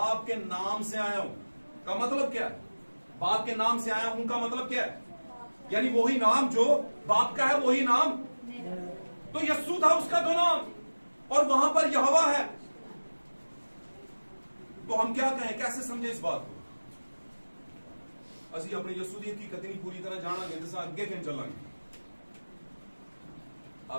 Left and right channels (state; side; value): inverted; both; correlation -1.00